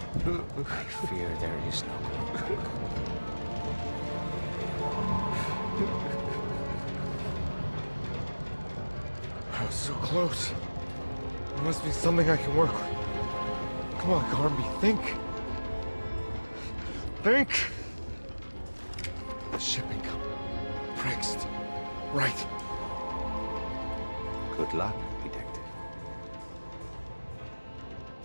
for. I fear there is no going back. I was so close. There must be something I can work with. Come on, Carnby, think. Think. The shipping company. Prext. Right. Good luck, detective.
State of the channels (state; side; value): inverted; both; correlation -1.00